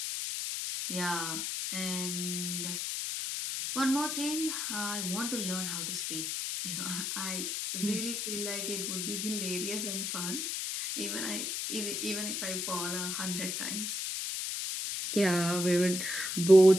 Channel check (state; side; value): noise; left; hiss, 2 dB below the sound